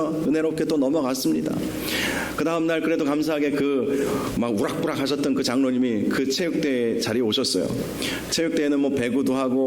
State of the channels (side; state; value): both; identical; correlation 1.00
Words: 은혜롭게 또 넘어갔습니다. 그 다음날 그래도 감사하게 막 우락부락 하셨던 그 장로님이 그 체육대회 자리에 오셨어요. 체육대회는 뭐 배구도